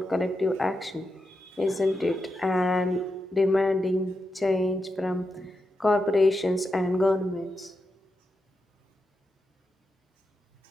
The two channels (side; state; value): both; normal; correlation 0.87